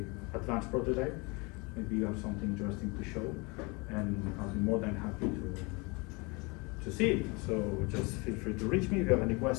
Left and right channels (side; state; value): right; quieter; 27.9 dB